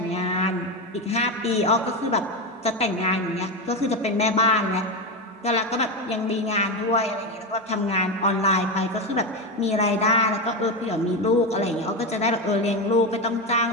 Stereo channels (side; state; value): both; normal; correlation 0.14